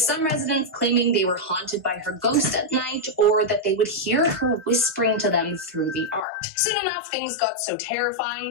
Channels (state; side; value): drops out; right; at 6.2 s